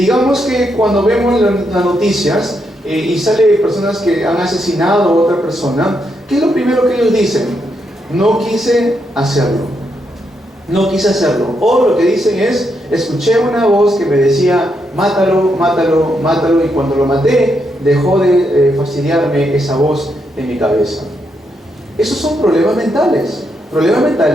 que cuando vemos las noticias y sale personas que han asesinado a otra persona, ¿qué es lo primero que ellos dicen? No quise hacerlo. No quise hacerlo. O lo que dicen es, escuché una voz que me decía, mátalo, mátalo, mátalo, y cuando lo maté, dejó de fastidiarme esa voz en mi cabeza. Esos son problemas mentales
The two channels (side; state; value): both; normal; correlation 0.80